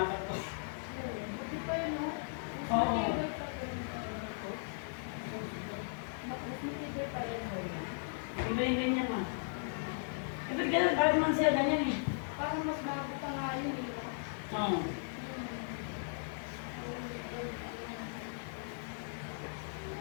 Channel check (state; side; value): silent; right; digital silence